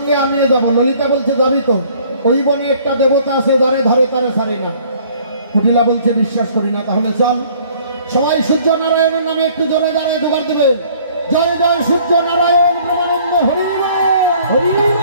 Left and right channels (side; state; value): both; inverted; correlation -0.57